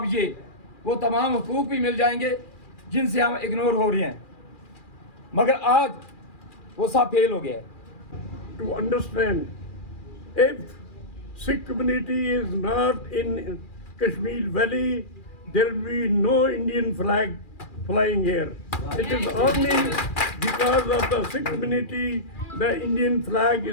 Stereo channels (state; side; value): late; right; 2.4 ms